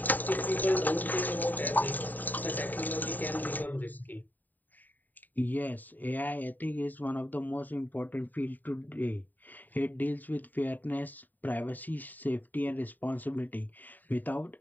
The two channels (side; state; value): right; late; 0.087 ms